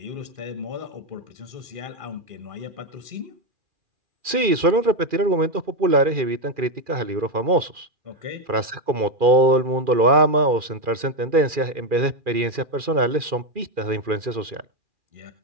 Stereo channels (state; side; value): late; left; 2.4 ms